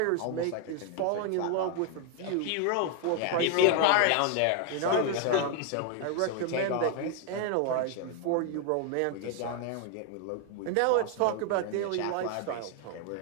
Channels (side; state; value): both; different; correlation 0.01